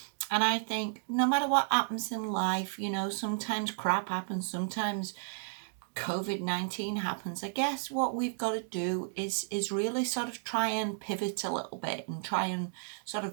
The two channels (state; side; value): silent; left; digital silence